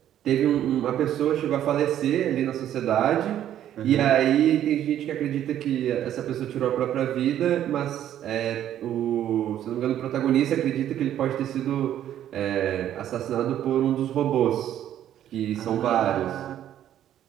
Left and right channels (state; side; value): quieter; left; 11.2 dB